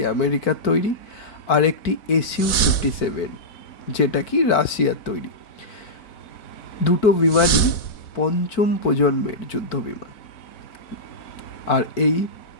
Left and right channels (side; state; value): right; late; 4.1 ms